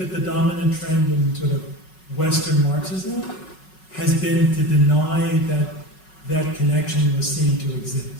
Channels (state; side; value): late; right; 5.4 ms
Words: the dominant trend in sort of Western Marxism has been to deny that that connection was seen to